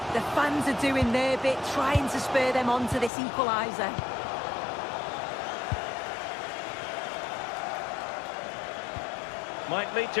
The fans are doing their bit, trying to spur them on to this equaliser. Might lead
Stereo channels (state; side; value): drops out; right; at 3.1 s